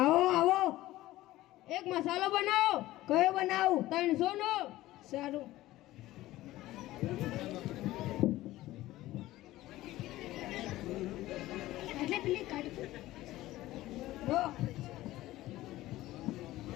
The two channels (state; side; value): quieter; right; 16.4 dB